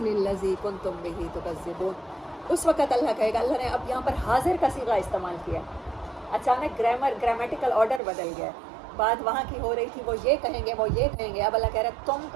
الذی کنتم بہ تکذبون. اس وقت اللہ کہے گا، اللہ نے اب یہاں پر حاضر کا صیغہ استعمال کیا. اچانک گرامیٹیکل آرڈر بدل گیا. بات وہاں کی ہو رہی تھی وہ یہ کہیں گے وہ یہ کہیں گے، اب اللہ کہہ رہا ہے تم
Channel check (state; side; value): drops out; left; at 8.0 s